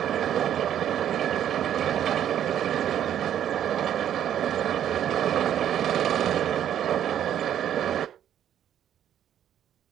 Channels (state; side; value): quieter; left; 10.3 dB